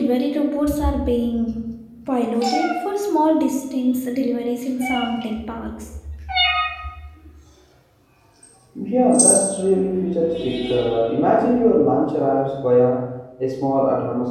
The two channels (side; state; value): both; identical; correlation 1.00